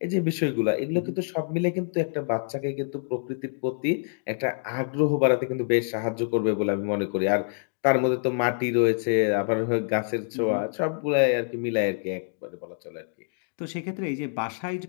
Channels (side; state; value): right; silent; digital silence